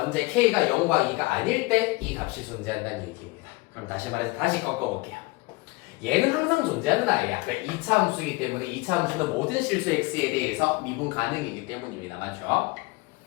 k가 0과 2가 아닐 때 이 값이 존재한다는 얘기입니다. 그럼 다시 말해서 다시 꺾어볼게요. 얘는 항상 존재하는 아이야. 왜? 2차 함수이기 때문에 2차 함수는 모든 실수 x에 대해서 미분 가능이기 때문입니다. 맞죠?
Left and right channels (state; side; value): quieter; right; 23.7 dB